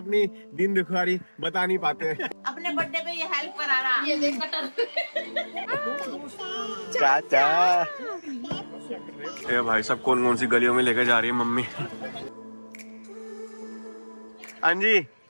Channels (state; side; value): inverted; both; correlation -1.00